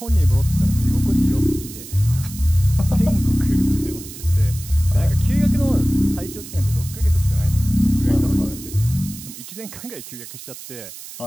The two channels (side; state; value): right; noise; hiss, 14 dB below the sound